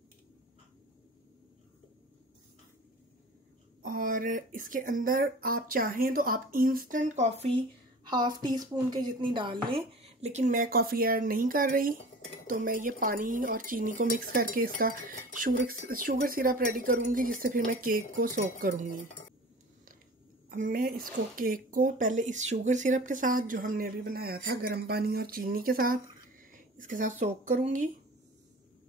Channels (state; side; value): normal; both; correlation 0.40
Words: और इसके अंदर आप चाहें तो आप इंस्टेंट कॉफ़ी ½ टीस्पून के जितनी डाल लें, लेकिन मैं कॉफ़ी ऐड नहीं कर रही तो मैं ये पानी और चीनी को मिक्स करके इसका शुगर सिरप रेडी करूँगी, जिससे फिर मैं केक को सोक करूँगी। अब मैं इसको केक को पहले इस शुगर सिरप के साथ जो हमने अभी बनाया था गर्म पानी और चीनी के साथ, इसके साथ सोक करूँगी।